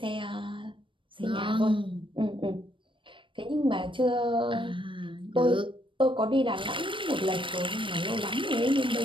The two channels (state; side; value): late; left; 0.25 ms